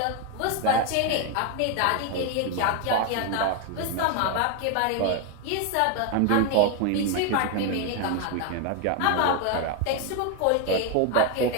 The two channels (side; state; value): both; different; correlation 0.01